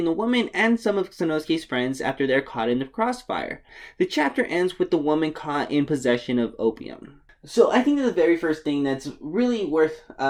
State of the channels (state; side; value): identical; both; correlation 1.00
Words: the woman and some of Sanosuke's friends after they're caught in the crossfire. The chapter ends with the woman caught in possession of opium. So I think that the very first thing that's really worth